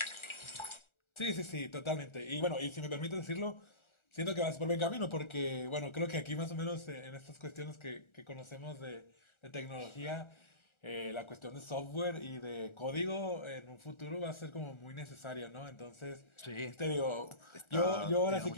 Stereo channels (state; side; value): late; right; 1.4 ms